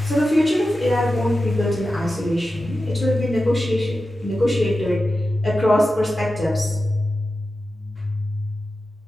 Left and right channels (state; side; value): normal; both; correlation 0.92